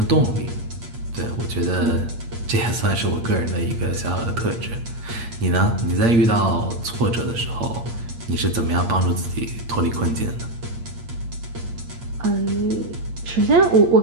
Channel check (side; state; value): left; late; 8.6 ms